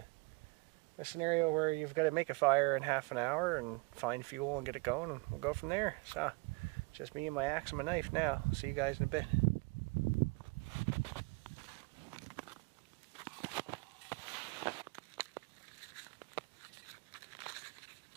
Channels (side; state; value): left; quieter; 27.5 dB